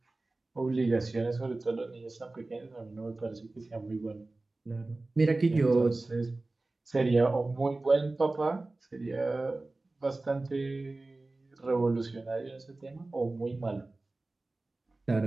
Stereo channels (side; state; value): left; quieter; 3.1 dB